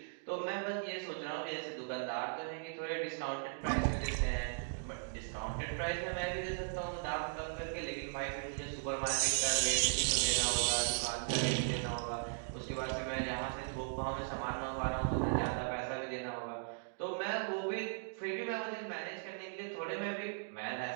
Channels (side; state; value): left; silent; digital silence